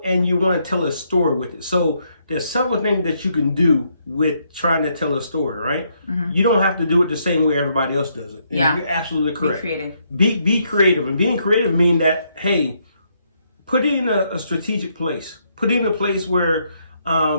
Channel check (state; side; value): inverted; both; correlation -0.74